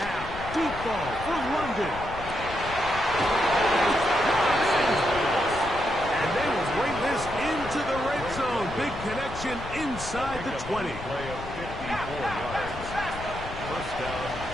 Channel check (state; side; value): noise; left; rumble, 11 dB below the sound